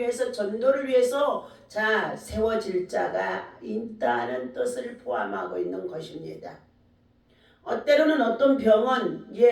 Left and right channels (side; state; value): both; identical; correlation 1.00